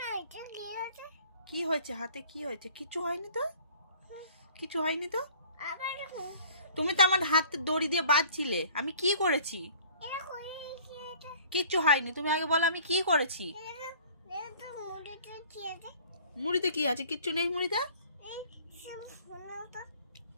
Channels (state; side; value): inverted; both; correlation -0.51